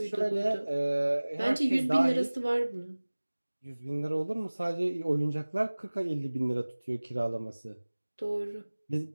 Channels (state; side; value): inverted; both; correlation -1.00